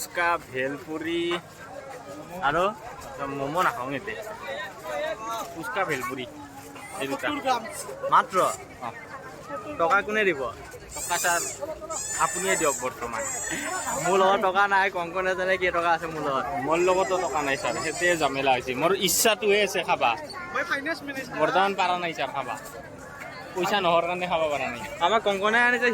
ভেলপুৰি আৰু ম'ম' নাখাওঁ এতিয়া ফুচকা ভেলপুৰি এই দুটা মাত্ৰ টকা কোনে দিব টকা ছাৰ আপুনিয়ে দিয়ক বৰ্তমান মোৰ লগত টকা নাই কংকনে জানে কেই টকা আছে মোৰ লগতো টকা নাই ছাৰ সেইটোৱে জামেলা হৈছে মোৰ ইচ্ছাটোহে আছে খাবা বৰ্তমান পাৰা নাই ছাৰ খাবা পইচা নহৰ কাৰণে খাব পৰা নাই আমাক কংকনে আনিছে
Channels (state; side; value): identical; both; correlation 1.00